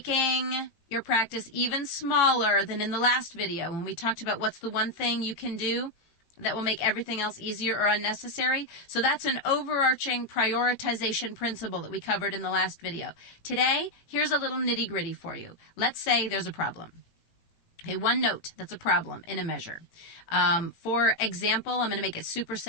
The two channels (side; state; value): right; late; 18 ms